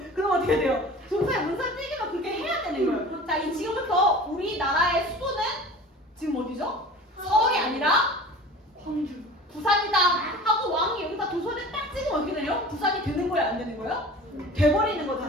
그럼 어떻게 돼요? 조서에 문서를 찍으면 그렇게 해야 되는 거예요. 자, 이 지금부터 우리나라의 수도는 지금 어디죠? 서울이 아니라 광주, 부산이다 하고 왕이 여기다 조서를 딱 찍으면 어떻게 되요? 부산이 되는 거예요? 안 되는 거예요? 돼버리는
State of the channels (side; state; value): both; normal; correlation 0.39